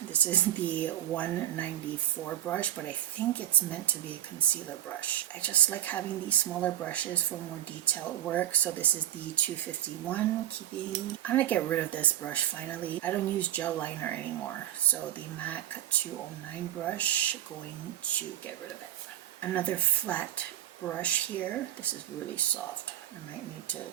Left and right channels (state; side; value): quieter; left; 12.5 dB